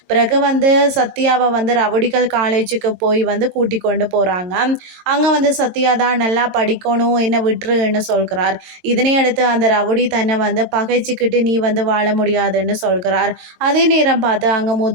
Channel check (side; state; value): left; late; 22 ms